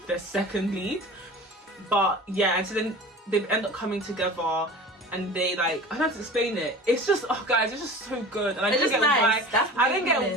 the second lead. But yeah, and so then they end up coming together, and they like, I don't have to explain it. It's just, oh guys, it's just so good. And I didn't get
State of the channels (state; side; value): normal; both; correlation 0.37